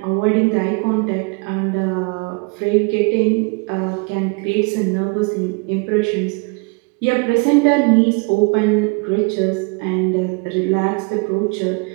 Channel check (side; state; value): left; quieter; 31.4 dB